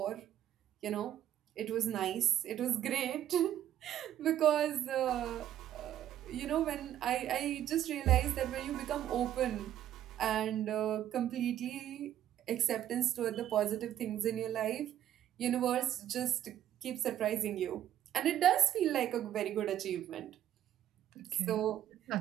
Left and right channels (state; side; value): quieter; left; 11.5 dB